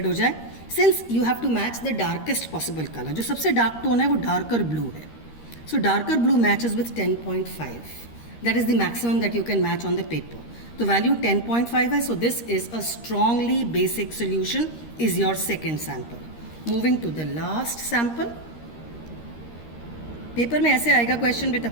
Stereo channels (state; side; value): late; right; 13 ms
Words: हो जाए. Since you have to match the darkest possible color. जो सबसे डार्क टोन है वो डार्कर ब्लू है. So darker blue matches with 10.5. That is the maximum that you can match on the paper. तो वैल्यू 10.5 है. So this is a strongly basic solution, is your second sample. Moving to the last sample. Paper में ऐसे आएगा क्वेश्चन बेटा,